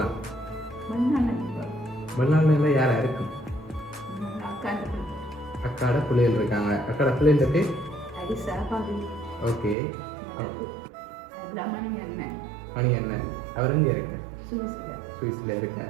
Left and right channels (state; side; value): drops out; left; at 9.8 s